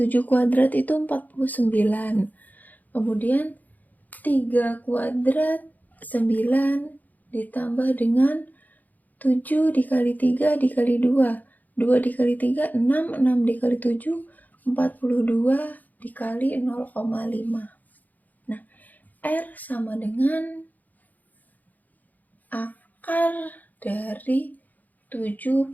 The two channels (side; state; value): right; late; 0.082 ms